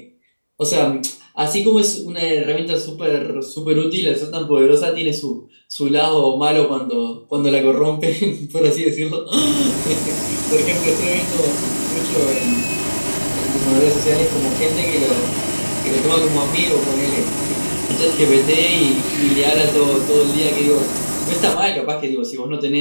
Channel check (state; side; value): inverted; both; correlation -1.00